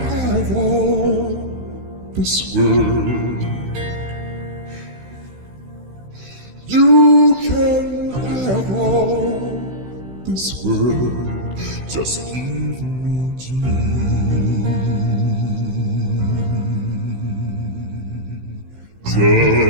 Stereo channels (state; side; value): late; left; 16 ms